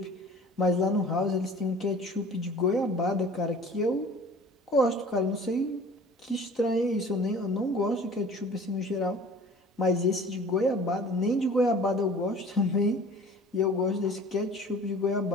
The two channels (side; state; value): both; normal; correlation 0.46